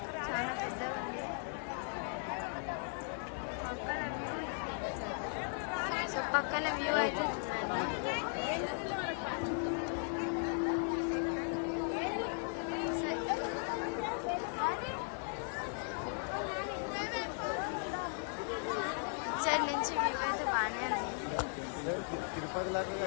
చాలా పెద్దగా ఉంది. పక్కన వ్యూ, సో పక్కన వ్యూ అయితే చూడండి. ఇచ్చడి నుంచి వ్యూ అయితే బాగానే ఉంది.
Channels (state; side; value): silent; right; 53 dB below the other